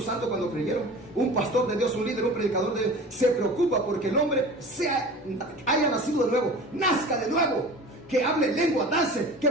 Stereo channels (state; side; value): normal; both; correlation 0.38